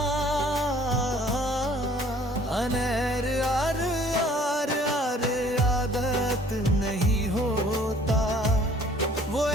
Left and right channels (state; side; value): normal; both; correlation 0.55